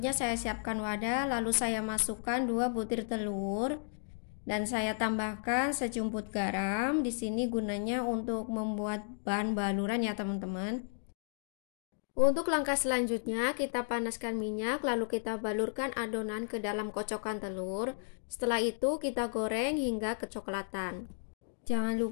saya siapkan wadah, lalu saya masukkan 2 butir telur dan saya tambahkan sejumput garam. Di sini gunanya untuk membuat bahan baluran ya teman-teman. Untuk langkah selanjutnya kita panaskan minyak, lalu kita balurkan adonan ke dalam kocokan telur. Setelah itu kita goreng hingga kecoklatan. Jangan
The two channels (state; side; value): silent; right; digital silence